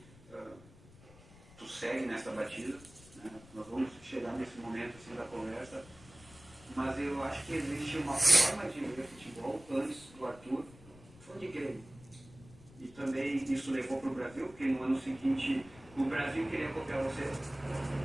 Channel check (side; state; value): left; noise; rumble, 22 dB below the sound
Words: tu segue nessa batida. Né? Nós vamos chegar nesse momento assim da conversa. Mas eu acho que existe uma forma de ver futebol antes do Arthur, foi de Grêmio. E também também isso levou para o Brasil, porque no ano seguinte o Brasil queria copiar você.